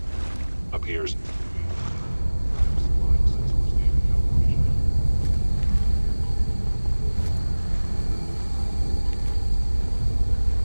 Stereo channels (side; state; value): both; inverted; correlation -1.00